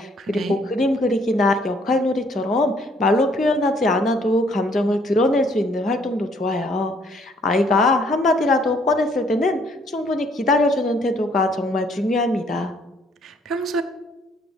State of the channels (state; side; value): normal; both; correlation 0.64